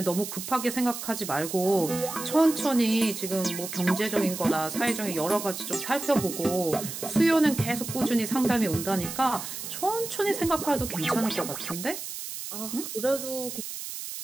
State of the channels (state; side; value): noise; right; hiss, 8 dB below the sound